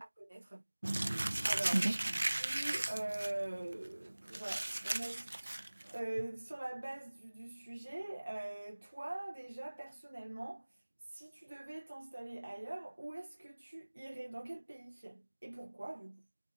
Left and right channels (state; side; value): inverted; both; correlation -1.00